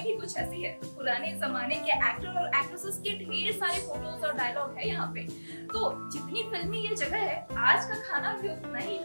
ही कुछ ऐसी है। पुराने जमाने के एक्टर और एक्ट्रेसेस के ढेर सारे फोटोज और डायलॉग है यहाँ पे। तो जितनी फिल्मी ये जगह है, आज का खाना भी उतना ही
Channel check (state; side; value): inverted; both; correlation -1.00